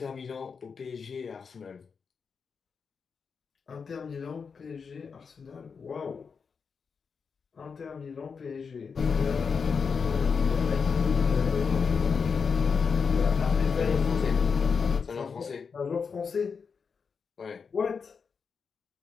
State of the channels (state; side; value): quieter; right; 5.7 dB